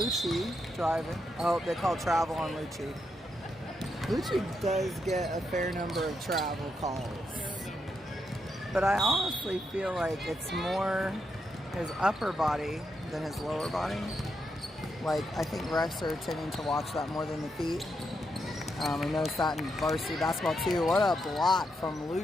driving. Oh, they call travel on Lucci. Lucci does get a fair number of travel calls. But I honestly feel like it's more his upper body than his lower body. Like, I think refs are tending to watch that more than the feet. We noticed that in varsity basketball too. What a block from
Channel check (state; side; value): normal; both; correlation 0.82